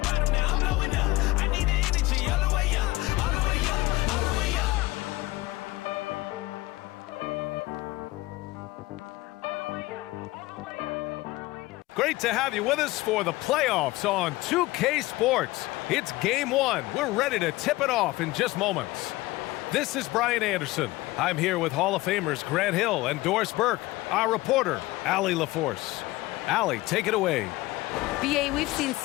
now I'm blowing up. I need the energy all the way up, all the way up, all the way up. Great to have you with us for the playoffs on 2K Sports. It's Game 1. We're ready to tip it off in just moments. This is Brian Anderson. I'm here with Hall of Famers Grant Hill and Doris Burke, our reporter, Allie LaForce. Allie, take it away. BA, we've seen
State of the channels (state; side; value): quieter; right; 19.4 dB